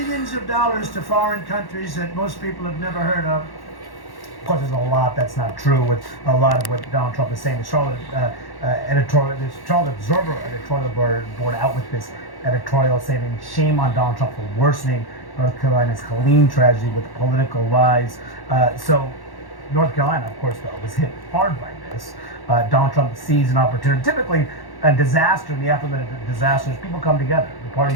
of dollars to foreign countries that most people have never heard of. Of course, there's a lot that's not true with a lot of what Donald Trump is saying. The Charlotte Charlotte Observer editorial board out with this editorial saying shame on Donald Trump for worsening North Carolina's Helene tragedy with political lies. So North Carolina, of course, though, was hit hard by this. Donald Trump sees an opportunity. Typically, a disaster, in the aftermath of disasters, people come together. The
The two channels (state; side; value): late; right; 1.1 ms